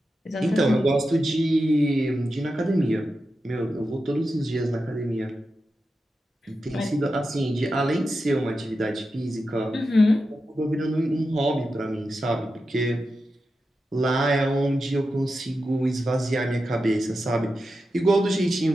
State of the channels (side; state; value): both; normal; correlation 0.90